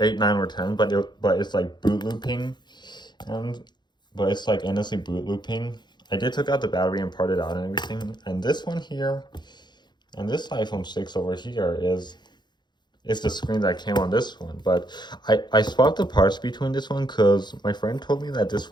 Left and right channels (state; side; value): late; right; 0.21 ms